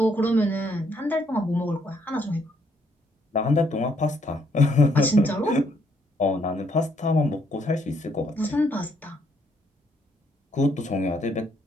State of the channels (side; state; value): both; normal; correlation 0.70